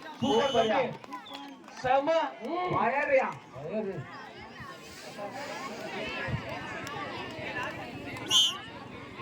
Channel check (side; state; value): both; identical; correlation 1.00